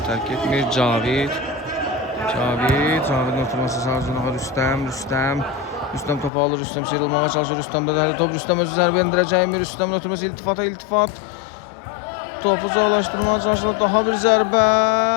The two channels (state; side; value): drops out; right; at 6.3 s